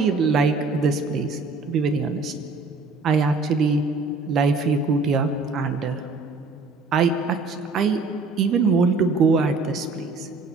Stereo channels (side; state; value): left; quieter; 3.9 dB